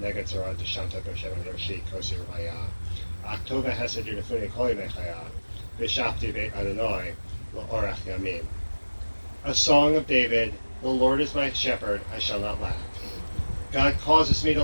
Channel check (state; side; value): inverted; both; correlation -1.00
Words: Neged Zorah Deshanta B'Shem Roshi Kosi Raya, Aktova Hesed Yunifuni Koli Mechaya, B'Shafti Beit Adonai, L'Orach Yamim. A song of David, the Lord is my shepherd, I shall not lack. God causes me to